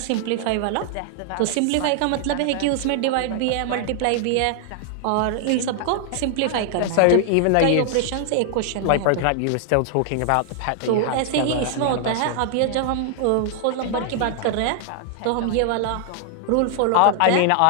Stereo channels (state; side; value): different; both; correlation 0.00